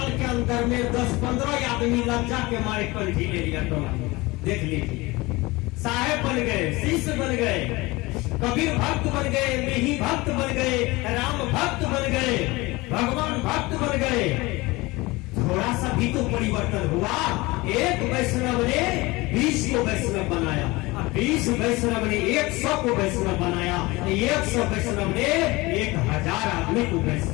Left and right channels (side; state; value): right; quieter; 22.2 dB